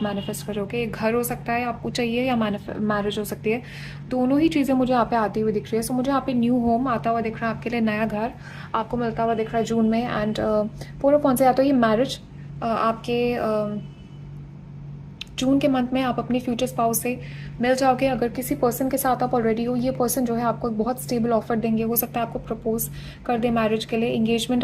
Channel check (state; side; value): identical; both; correlation 1.00